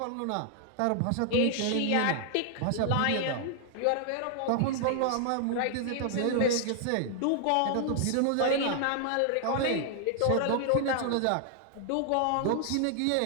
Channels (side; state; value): both; different; correlation 0.00